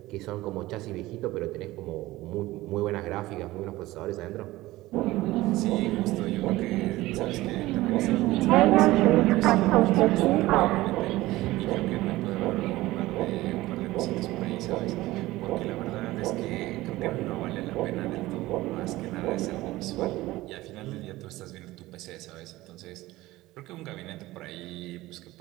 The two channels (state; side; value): quieter; left; 17.9 dB